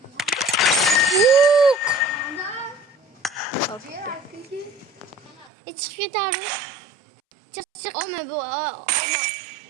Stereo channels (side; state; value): left; drops out; at 5.5 s